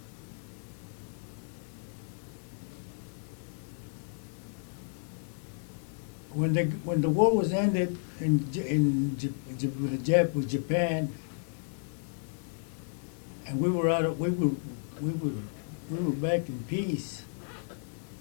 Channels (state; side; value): silent; right; digital silence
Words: when the war was ended with Japan, and we were back in peace,